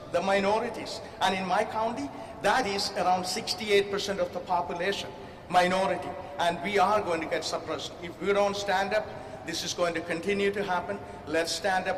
The minorities. And in my county, that is around 68% of the population, minority. And we are going to get suppressed. If we don't stand up, this is going to continue to happen. Let's stand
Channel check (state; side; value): identical; both; correlation 1.00